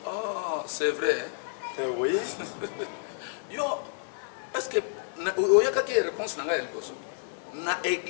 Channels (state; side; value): silent; right; digital silence